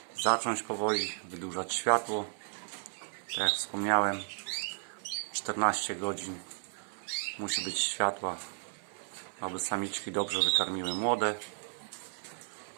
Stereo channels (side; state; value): left; silent; 55 dB below the other